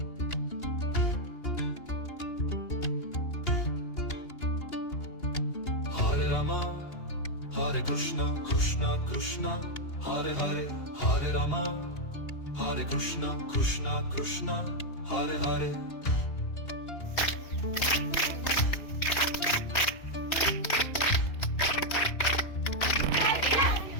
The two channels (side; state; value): right; late; 2.8 ms